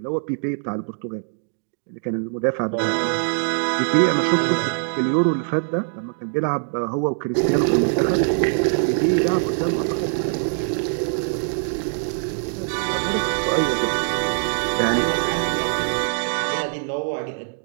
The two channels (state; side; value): silent; left; 64 dB below the other